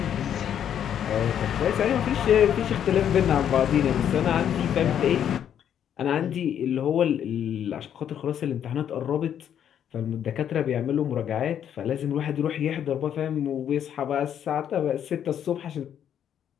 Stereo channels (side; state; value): right; quieter; 9.4 dB